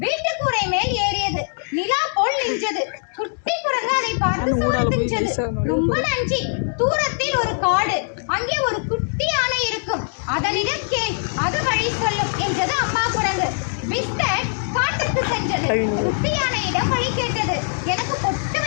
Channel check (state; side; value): silent; right; digital silence